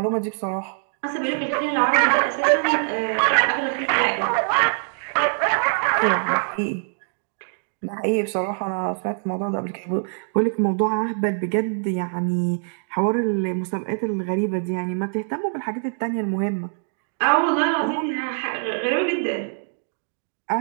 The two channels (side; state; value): left; silent; digital silence